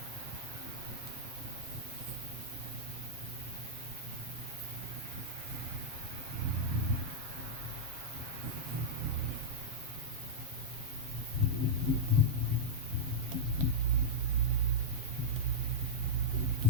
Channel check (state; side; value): late; left; 7.3 ms